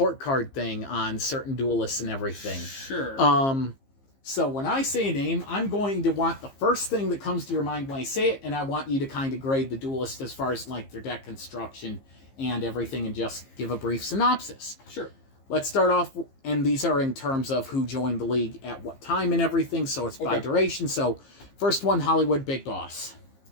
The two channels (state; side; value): late; right; 15 ms